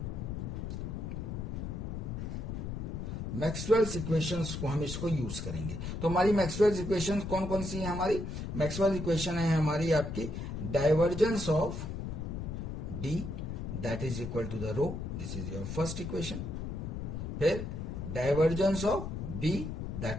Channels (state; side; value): noise; left; rumble, 5 dB below the sound